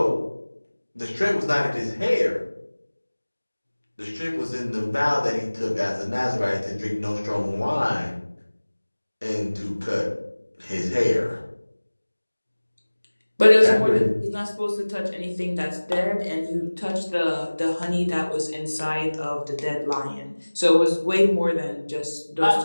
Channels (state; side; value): inverted; both; correlation -1.00